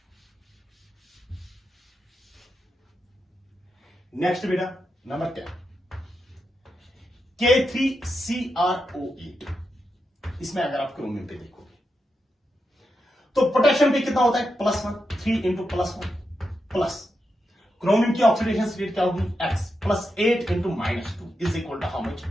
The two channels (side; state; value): both; normal; correlation 0.86